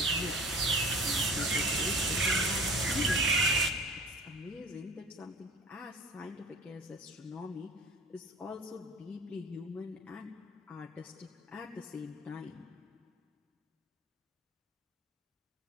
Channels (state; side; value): normal; both; correlation 0.42